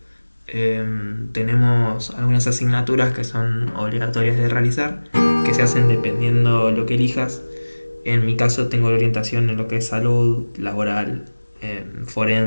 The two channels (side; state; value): both; inverted; correlation -1.00